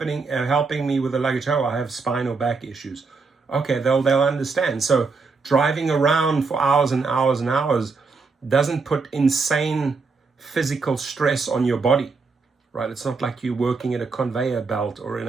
me with the luggage? Oh, I have spinal back issues. Okay, they'll understand. So driving around for hours and hours and hours doesn't put insane physical stress on your body, right? It's not like you're working at a conveyor belt or in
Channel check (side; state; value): left; quieter; 4.4 dB